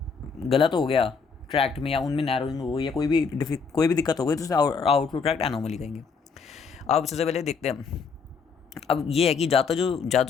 गलत हो गया ट्रैक्ट में, या उनमें नैरोइंग हो गई, या कोई भी दिक्कत हो गई, तो उसे आउटफ्लो ट्रैक्ट एनोमली कहेंगे। अब सबसे पहले देखते हैं, अब ये है कि ज़्यादा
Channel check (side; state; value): right; quieter; 5.4 dB